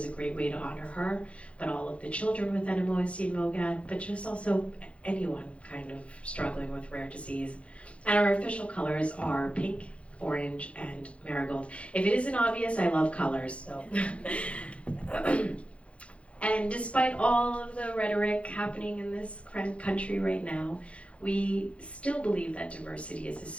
a great way to honor her, but all of the children with NMOSD and MOGAD, but just also anyone kind of struggling with rare disease. And our official colors are pink, orange, and marigold. If it isn't obvious, I love colors, so. And despite all of the rhetoric happening in this country right now, we still believe that diversity is a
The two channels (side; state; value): right; late; 0.062 ms